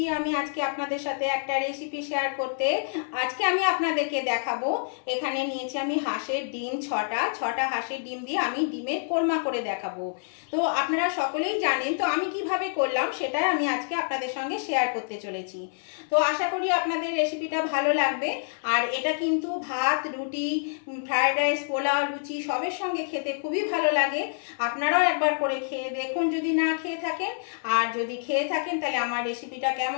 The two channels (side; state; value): right; silent; 60 dB below the other